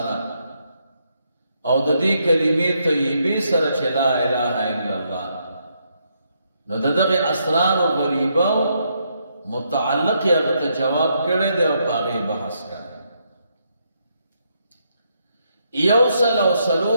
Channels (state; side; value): inverted; both; correlation -0.77